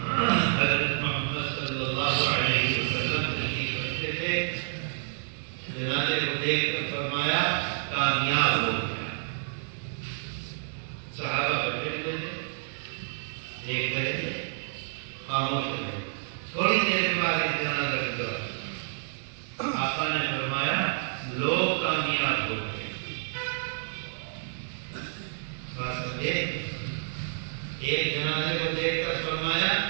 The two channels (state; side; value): silent; left; digital silence